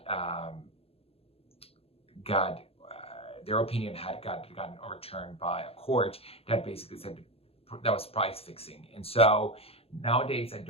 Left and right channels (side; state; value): right; late; 0.28 ms